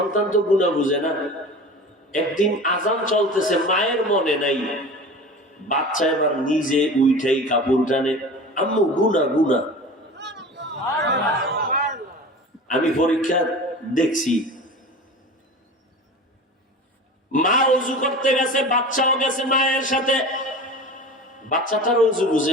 তো গুনাহ বুঝে না। একদিন আজান চলতেছে, মায়ের মনে নাই, বাচ্চা এবার নিজে উঠাই কাপড় টানে, আম্মু গুনাহ গুনাহ। আমি পরীক্ষা দেখছি, মা ওযু করতে গেছে, বাচ্চাও গেছে মায়ের সাথে, বাচ্চাটার ওযু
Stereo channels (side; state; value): both; normal; correlation 0.35